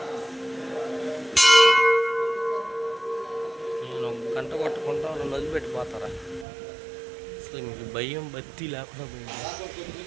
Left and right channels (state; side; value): drops out; left; at 6.5 s